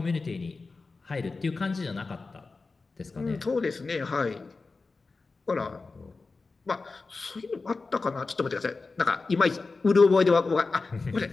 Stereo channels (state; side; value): quieter; right; 3.9 dB